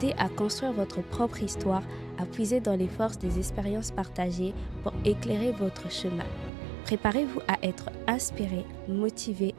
à construire votre propre histoire, à puiser dans les forces des expériences partagées pour éclairer votre chemin. Préparez-vous à être inspiré, motivé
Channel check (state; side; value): drops out; left; at 6.5 s